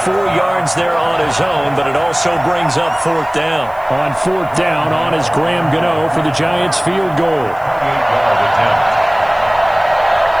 4 yards there on his own, but it also brings up 4th down. On 4th down, on is Graham Gano for the Giants field goal.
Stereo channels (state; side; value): noise; right; hiss, 29 dB below the sound